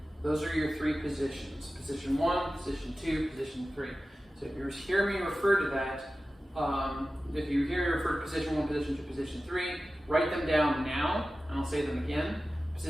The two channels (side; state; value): both; normal; correlation 0.95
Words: Those are your 3 positions. Position 1, position 2, position 3. So if you hear me refer to that, if you hear me refer to position 1, position 2, position 3, write them down now, and I'll say them again.